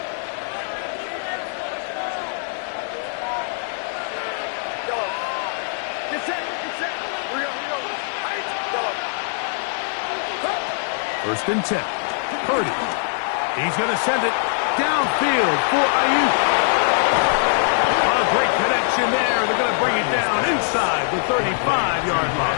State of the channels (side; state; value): right; silent; digital silence